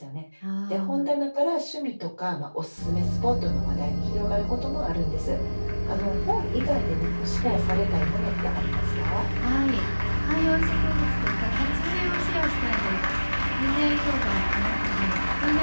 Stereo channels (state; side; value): inverted; both; correlation -1.00